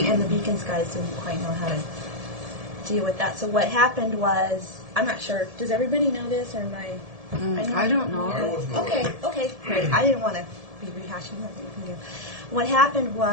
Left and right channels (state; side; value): late; left; 1.7 ms